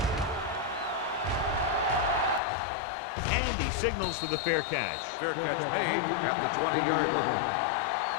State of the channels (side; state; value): right; drops out; at 2.4 s